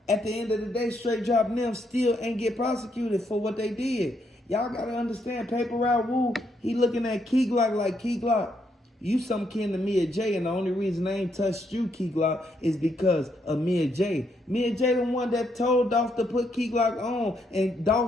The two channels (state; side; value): normal; both; correlation 0.76